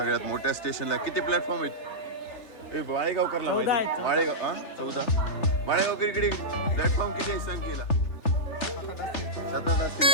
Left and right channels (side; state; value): right; late; 3.4 ms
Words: मोठ्या स्टेशनला. किती प्लॅटफॉर्म आहेत? माळेगाव करला माहिती माळेगाव हा 14 माळेगाव इकडे प्लॅटफॉर्म किती आहे सांग केला 7 असतील